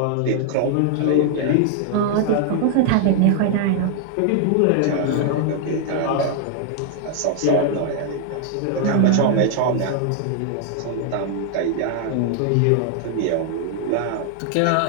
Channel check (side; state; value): both; different; correlation 0.00